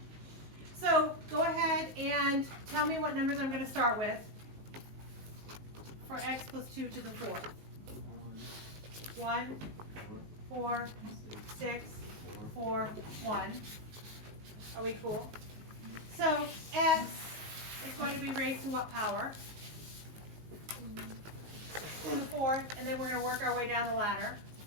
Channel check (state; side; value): late; left; 19 ms